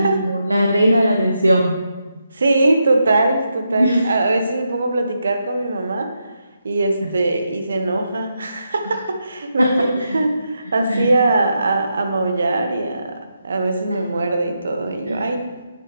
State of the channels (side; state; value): both; inverted; correlation -0.84